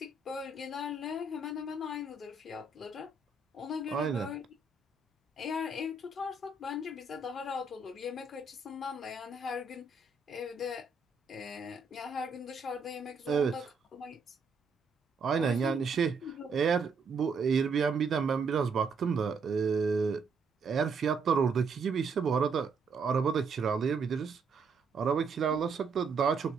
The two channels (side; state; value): left; quieter; 4.3 dB